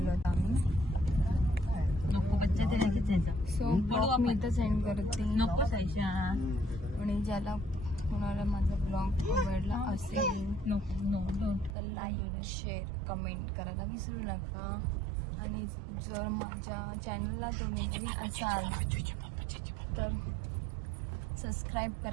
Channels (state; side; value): drops out; left; at 11.8 s